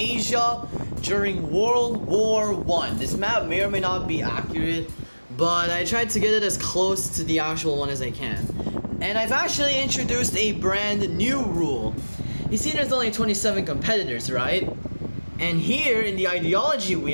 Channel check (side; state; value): both; inverted; correlation -1.00